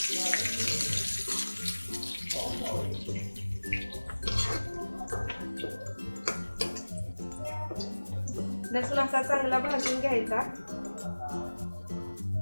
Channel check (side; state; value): both; inverted; correlation -1.00